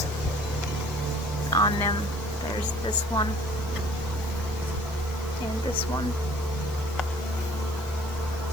on them. There's this one and this one.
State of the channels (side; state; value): right; noise; hiss, 19 dB below the sound